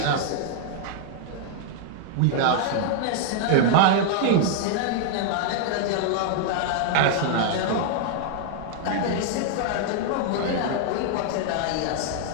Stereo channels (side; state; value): both; different; correlation -0.01